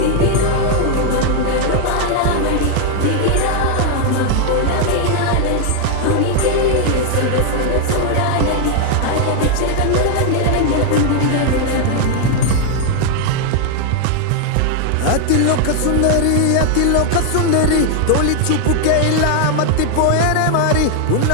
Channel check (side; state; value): both; different; correlation 0.00